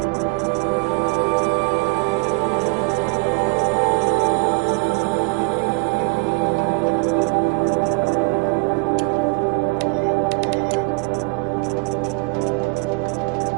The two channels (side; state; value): left; quieter; 30.9 dB